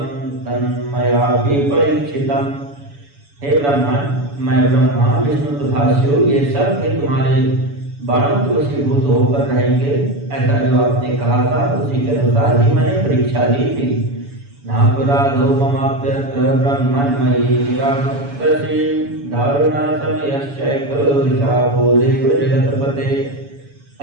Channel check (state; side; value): late; left; 7.0 ms